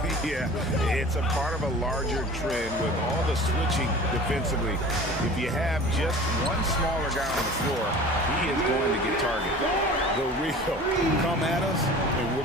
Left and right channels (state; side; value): normal; both; correlation 0.41